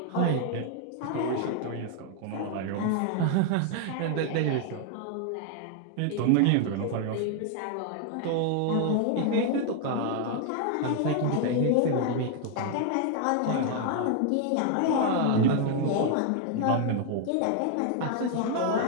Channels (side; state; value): both; different; correlation 0.00